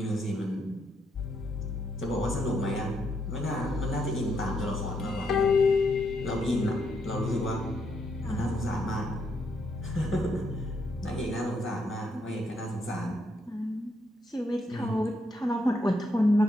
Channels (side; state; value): both; normal; correlation 0.76